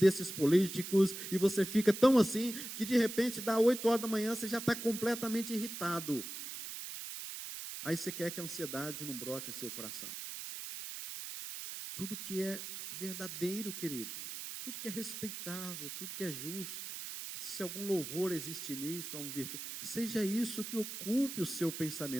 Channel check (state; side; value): noise; right; hiss, 8 dB below the sound